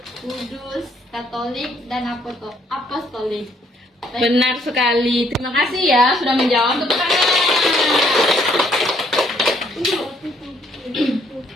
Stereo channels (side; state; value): both; normal; correlation 0.67